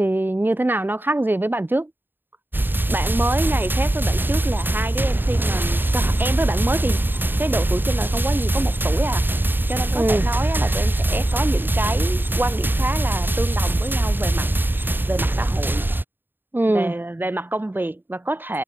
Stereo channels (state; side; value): late; left; 0.095 ms